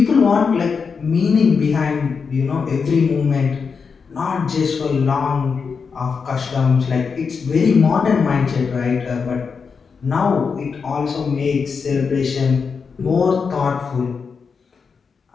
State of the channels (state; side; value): quieter; right; 5.6 dB